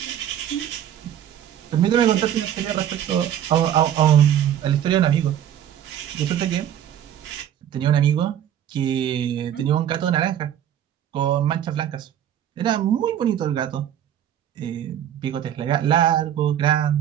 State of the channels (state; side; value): quieter; left; 10.3 dB